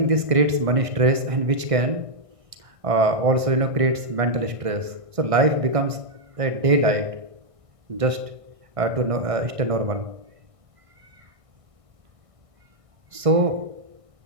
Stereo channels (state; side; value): late; left; 1.6 ms